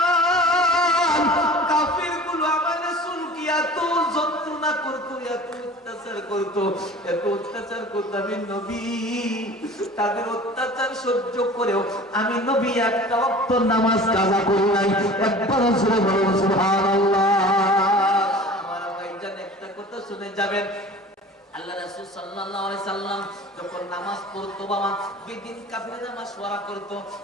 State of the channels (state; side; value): normal; both; correlation 0.42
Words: কাফিরগুলো আমার রাসূলকে এত যন্ত্রণা করতো, এত অত্যাচার করতো, এত অত্যাচার করতো। আমি নবী তাদের অত্যাচার সহ্য করেও আমি নবী একটা ওয়াক্ত নামাজ কাজা করি নাই। একবার জোরে বলুন সুবহানাল্লাহ। আমার ভাইজান একটা কথা শুনে যাবেন, আল্লাহ রাসূল সাল্লাল্লাহু আলাইহি সাল্লাম যখন নামাজ পড়তো বাবা বেদিন কাফিররা মাশওয়ারা করতো,